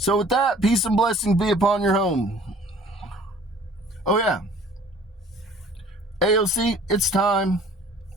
with that, peace and blessings be upon your home. Oh yeah. AOC, it's time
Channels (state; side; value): normal; both; correlation 0.51